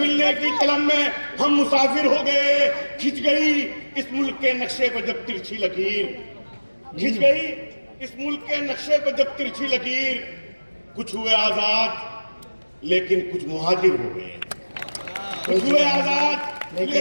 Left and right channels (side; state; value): both; inverted; correlation -1.00